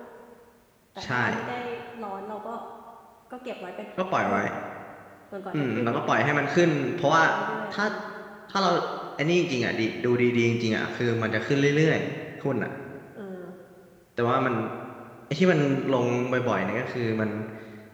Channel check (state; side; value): identical; both; correlation 1.00